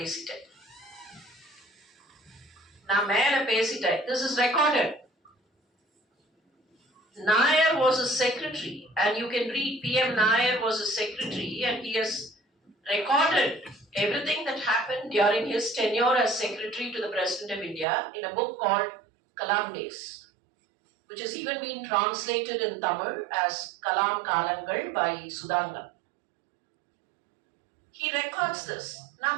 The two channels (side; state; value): left; drops out; at 17.9 s